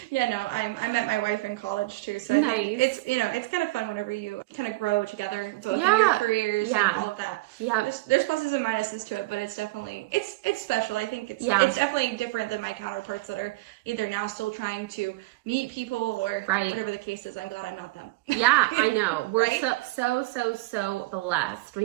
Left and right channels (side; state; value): left; quieter; 20.8 dB